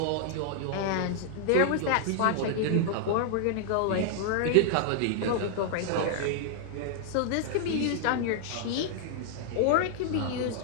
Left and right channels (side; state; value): both; different; correlation 0.00